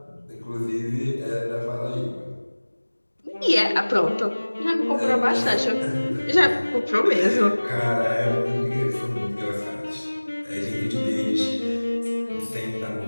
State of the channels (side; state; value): both; inverted; correlation -1.00